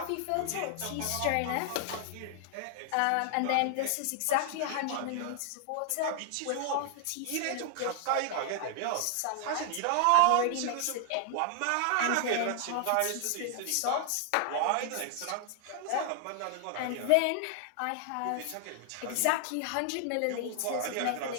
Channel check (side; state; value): both; different; correlation 0.00